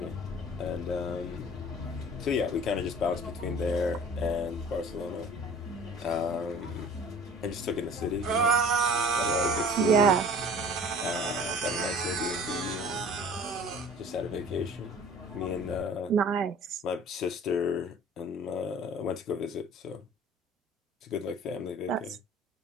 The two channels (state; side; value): normal; both; correlation 0.46